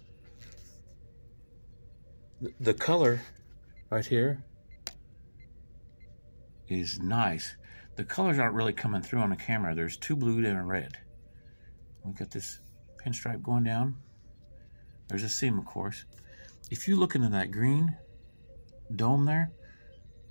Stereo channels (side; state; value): both; inverted; correlation -1.00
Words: The color right here is nice. The colors aren't really coming through on the camera. There's 2 blue and a red. We got this pinstripe going down. There's a seam, of course. if you look into that green dome there,